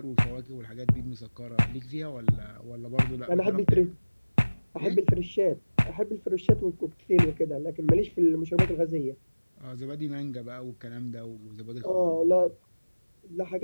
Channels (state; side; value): inverted; both; correlation -1.00